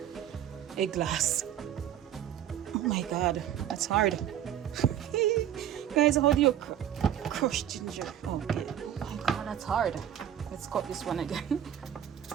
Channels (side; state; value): left; quieter; 10.5 dB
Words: a glass. Oh my god, that's hard. Guys, how do you crush ginger? Okay. Oh my god, that's hard. Let's cut this one again.